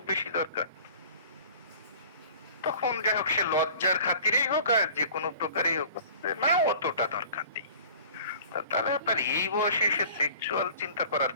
বেশি দরকার? তখন যাই হোক সে লজ্জার খাতিরেই হোক আর যে কোনো প্রকারেই হোক, না অতটা দরকার নেই। তাহলে আপনার এই বয়সে এসে সেক্সুয়াল চিন্তা করার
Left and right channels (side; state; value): both; inverted; correlation -0.46